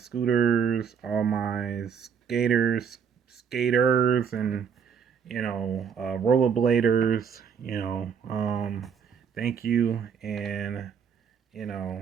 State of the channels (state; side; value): quieter; left; 7.1 dB